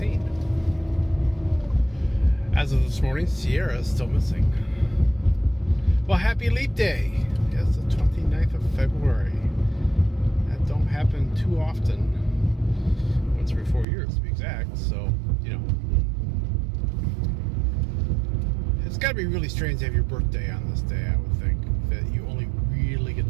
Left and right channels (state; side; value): drops out; left; at 13.9 s